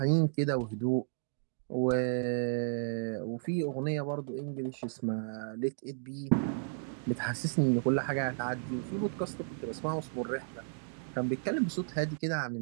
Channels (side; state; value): left; silent; digital silence